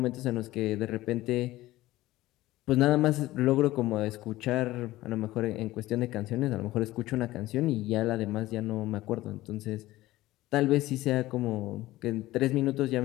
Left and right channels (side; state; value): right; quieter; 17.0 dB